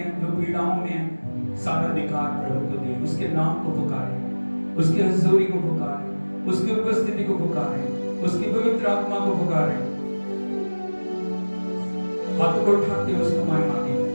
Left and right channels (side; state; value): both; inverted; correlation -1.00